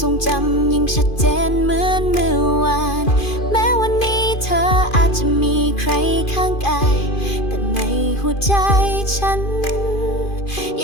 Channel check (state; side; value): late; right; 2.5 ms